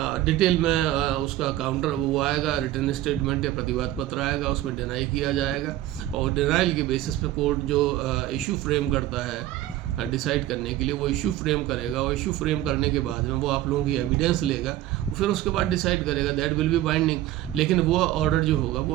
डिटेल में उसका काउंटर वो आएगा, रिटर्न स्टेटमेंट या प्रतिवाद पत्र आएगा, उसमें डिनाई किया जाएगा, और डिनाइल के बेसिस पे कोर्ट जो इशू फ्रेम करता है डिसाइड करने के लिए, वो इशू फ्रेम करेगा, और इशू फ्रेम करने के बाद में वो आप लोगों की एविडेंस लेगा, फिर उसके बाद डिसाइड करेगा, दैट विल बी बाइंडिंग। लेकिन वो ऑर्डर जो होगा वो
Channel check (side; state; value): left; quieter; 14.4 dB